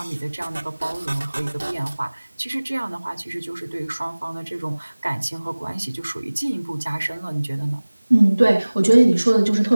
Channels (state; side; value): inverted; both; correlation -1.00